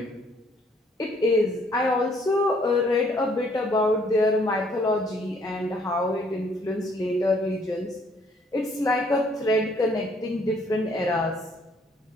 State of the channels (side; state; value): both; normal; correlation 0.64